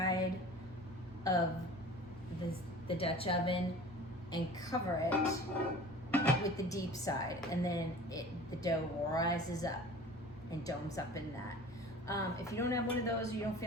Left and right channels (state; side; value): normal; both; correlation 0.42